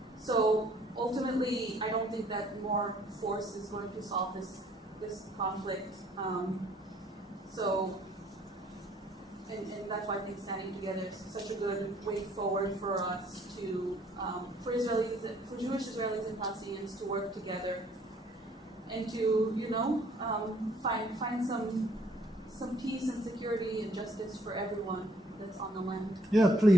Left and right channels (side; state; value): both; normal; correlation 0.62